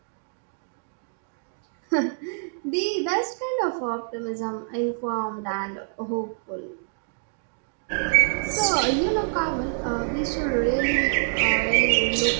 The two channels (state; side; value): silent; left; digital silence